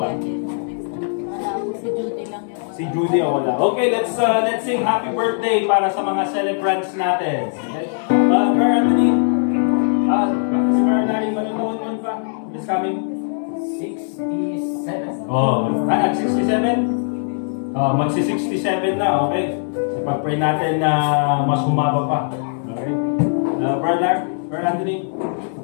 pa? Wala ako, si Judy lang yung Si Judy o wala. Okay, let's sing happy birthday para sa mga celebrants natin. Okay? Brother Anthony, si Brother Larry, manonood nun pa? It's coming. 67. Oh, at 67? Magsi-67 na, okay? Ipag-pray natin na mas humaba pa. Okay? Brother Anthony?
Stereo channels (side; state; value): right; silent; digital silence